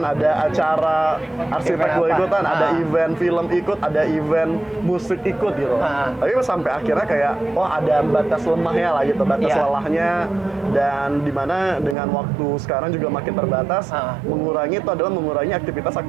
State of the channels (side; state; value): left; drops out; at 12.0 s